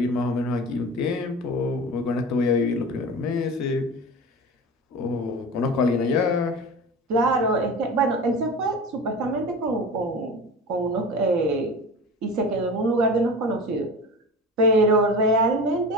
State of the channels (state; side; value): normal; both; correlation 0.32